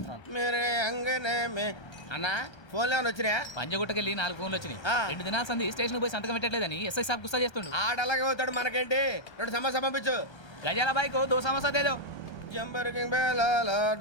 మేరే అంగనే మే అన్నా ఫోన్లో ఏమైనా వచ్చినాయా? పంజగుట్టకెళ్ళి 4 ఫోన్లు వచ్చినాయి. 2 దినాల సంది స్టేషన్ పోయి సంతకం పెట్టలేదని ఎస్ఐ సాబ్ గుస్తా చేస్తుండు. ఆడలాగే పోతాడు, మనకేంటి? 2 సమస్య పంపించు. గజాల బైక్ 2 సమస్య దేదో. జంబరకింగ్ బేలాల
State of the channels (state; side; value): late; right; 1.3 ms